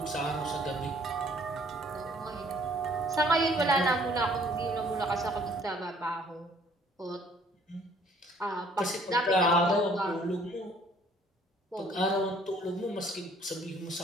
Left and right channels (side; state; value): both; normal; correlation 0.59